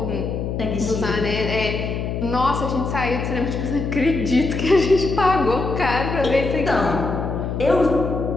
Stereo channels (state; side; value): noise; left; hum, 3 dB below the sound